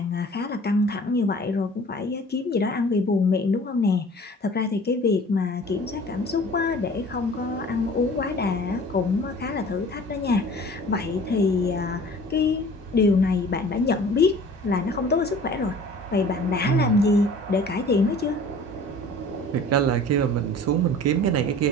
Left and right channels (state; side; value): normal; both; correlation 0.46